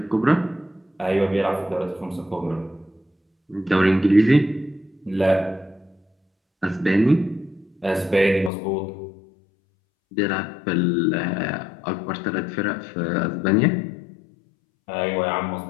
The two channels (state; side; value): drops out; right; at 8.5 s